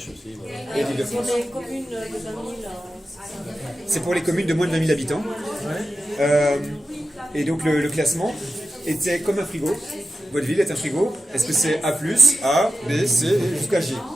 aussi. Et l'Île-de-France. Pour les communes de 20 000, C'est pour les communes de moins de 20 000 habitants. Et donc le classement était comme un frigo. Votre ville est un frigo. Est-ce que c'est A+, A, B, C, jusqu'à G?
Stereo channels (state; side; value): normal; both; correlation 0.92